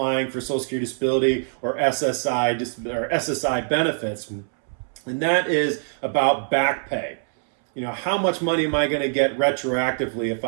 for Social Security Disability or SSI benefits, and that is about back pay. How much money am I going to get retroactively if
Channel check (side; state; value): left; silent; 63 dB below the other